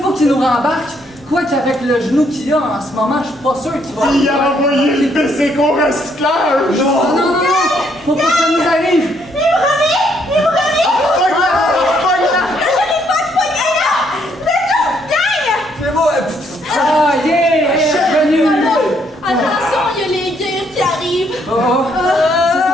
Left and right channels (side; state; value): both; normal; correlation 0.71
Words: qu'il nous rembarque. Quoi qu'avec le genou qu'il a en ce moment, je suis pas sûr qu'il va... Il a envoyé le PC qu'au recyclage! Non, non, non, non! Faut pas que ça nous arrive! Il me revient! Il me revient! Pogne-la! Je l'ai pas pogné là!